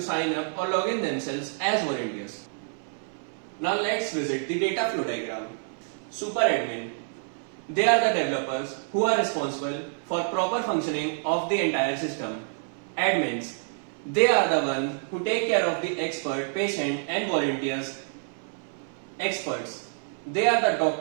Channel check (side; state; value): left; silent; 60 dB below the other